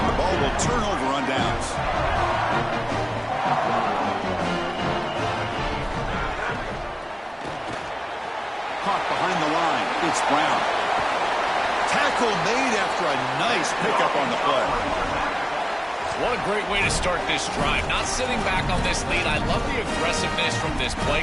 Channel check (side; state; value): both; identical; correlation 1.00